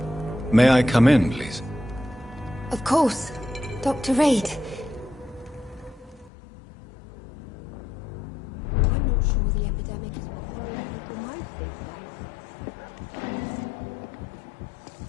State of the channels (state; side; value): drops out; right; at 6.3 s